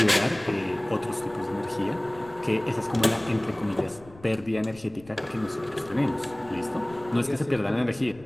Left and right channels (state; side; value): noise; left; rumble, 22 dB below the sound